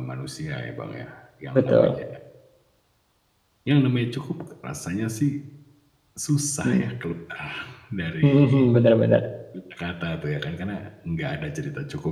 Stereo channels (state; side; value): identical; both; correlation 1.00